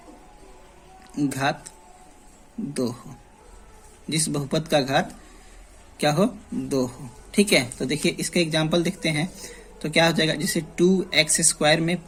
2 हो, जिस बहुपद का घात क्या हो? 2 हो। ठीक है, तो देखिए इसका एग्जांपल देखते हैं तो क्या हो जाएगा? जैसे 2x स्क्वायर में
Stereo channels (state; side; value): identical; both; correlation 1.00